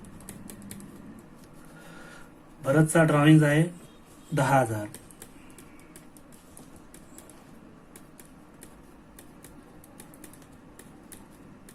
भरतचा ड्रॉइंग आहे 10,000.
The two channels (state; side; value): identical; both; correlation 1.00